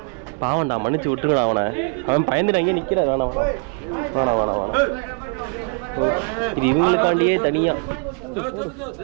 பாவன்டா, மன்னிச்சு விட்டுருங்கடா அவனை. அவன் பயந்துட்டு அங்கே நிற்கிறான். வேணாம் வேணாம் வேணாம் வேணாம் வேணாம். இது இவங்களுக்காண்டியே தனியாக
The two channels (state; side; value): quieter; left; 35.5 dB